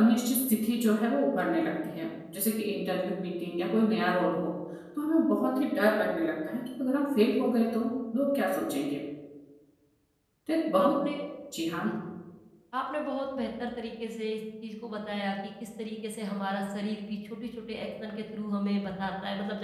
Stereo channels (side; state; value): both; identical; correlation 1.00